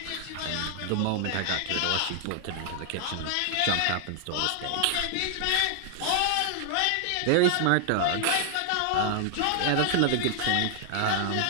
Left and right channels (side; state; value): both; different; correlation 0.00